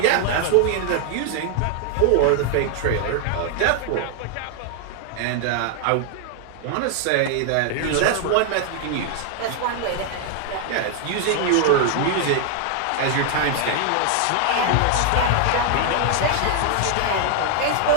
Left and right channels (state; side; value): different; both; correlation 0.00